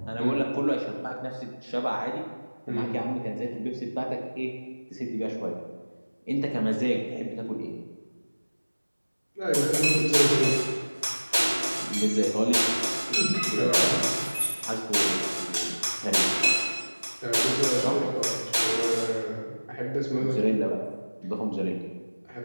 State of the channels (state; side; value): inverted; both; correlation -1.00